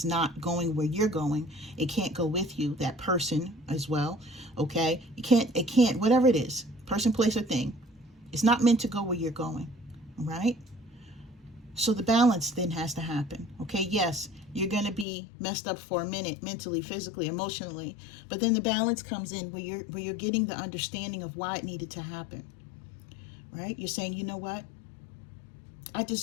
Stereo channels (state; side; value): drops out; right; at 15.1 s